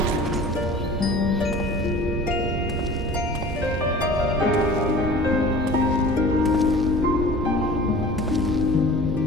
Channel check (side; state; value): both; normal; correlation 0.43